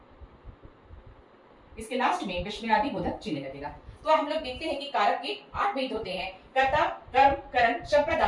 इसके लास्ट में विस्मयादि बोधक चिन्ह लगेगा। तो हम लोग देखते हैं कि कारक के 8 भेद होते हैं। कर्ता, कर्म, करण,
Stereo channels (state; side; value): identical; both; correlation 1.00